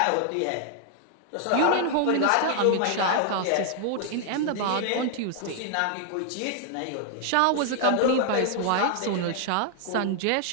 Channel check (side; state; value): both; different; correlation 0.00